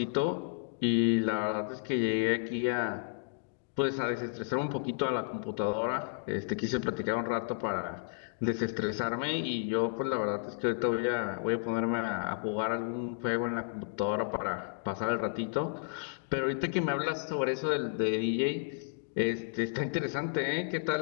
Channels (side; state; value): right; silent; digital silence